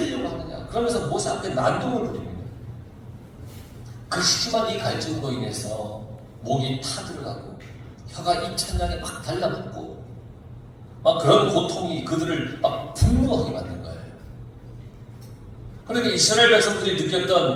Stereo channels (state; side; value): identical; both; correlation 1.00